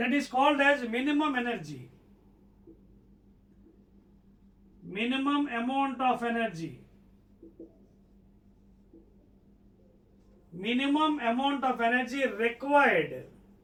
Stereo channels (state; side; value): identical; both; correlation 1.00